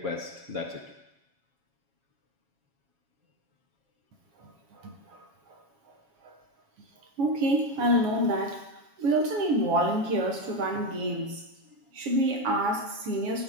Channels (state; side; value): late; left; 7.3 ms